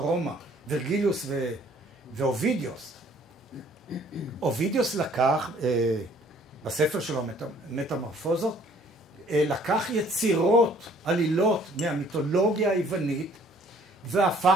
ורגליוס ואובידיוס. אובידיוס לקח, בספר שלו, מטמורפוזות, לקח יצירות, עלילות מהמיתולוגיה היוונית,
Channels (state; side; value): normal; both; correlation 0.58